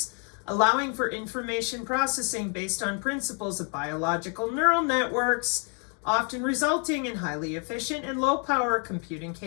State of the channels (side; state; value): right; quieter; 38.8 dB